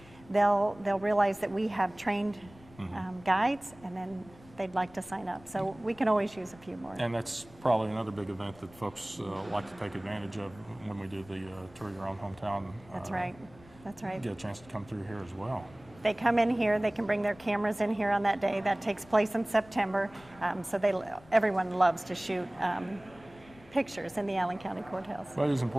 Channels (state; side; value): noise; left; rumble, 23 dB below the sound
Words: They'll realize that we have trained guides, and then they'd like to sign up. So we can always use a few more. And that's probably another big event that folks like to take advantage of when we do the Tour Your Own Hometown. That's right. That's right. Get a chance to come through here as well. They come in here, they can bring their cameras in here on that day. That takes place in September. So everyone loves to shoot pictures in the Allen County Courthouse. Well, it is